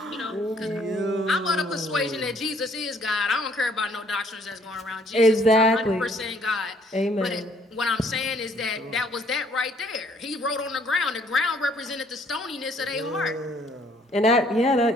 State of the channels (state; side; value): normal; both; correlation 0.63